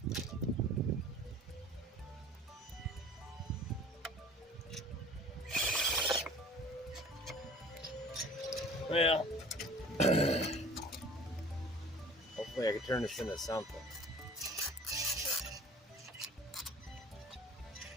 Well, hopefully I can turn this into something.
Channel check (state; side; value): normal; both; correlation 0.46